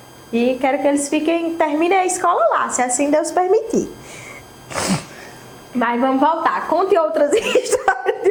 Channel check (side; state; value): both; identical; correlation 1.00